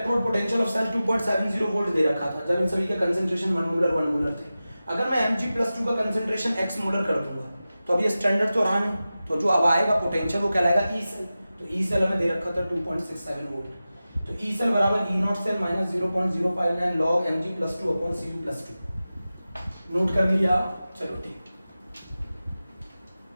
potential of cell 2.70 volt दे रखा था, जब इन सभी के कंसेंट्रेशन 1 मोलर थे, अगर मैं Mg +2 का कंसेंट्रेशन x मोलर कर दूंगा तो अब ये स्टैंडर्ड तो रहा नहीं, तो जो अब आएगा पोटेंशियल वो कहलाएगा ई सेल। तो ई सेल हमें दे रखा था 2.67 वोल्ट। तो ई सेल बराबर E0 cell minus 0.059 log Mg +2 upon Cu +2। Note कर लिया? चलो ठीक,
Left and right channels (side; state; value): both; inverted; correlation -0.95